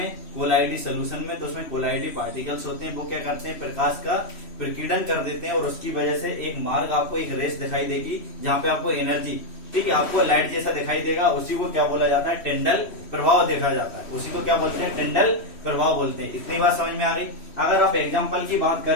कोलाइडी सोल्यूशन में, तो उसमें कोलाइडी पार्टिकल्स होते हैं। वो क्या करते हैं, प्रकाश का प्रकीर्णन कर देते हैं और उसकी वजह से एक मार्ग आपको, एक रेस दिखाई देगी जहाँ पे आपको एनर्जी, ठीक है, आपको लाइट जैसा दिखाई देगा। उसी को क्या बोला जाता है, टिंडल प्रभाव देखा जाता है। उसी को क्या बोलते हैं, टिंडल प्रभाव बोलते हैं। इतनी बात समझ में आ गई। अगर आप एग्जाम्पल की बात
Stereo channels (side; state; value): right; late; 3.1 ms